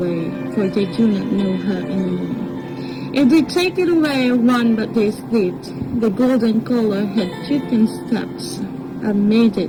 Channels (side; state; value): both; identical; correlation 1.00